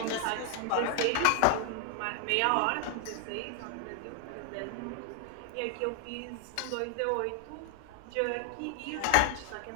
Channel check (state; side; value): different; both; correlation 0.00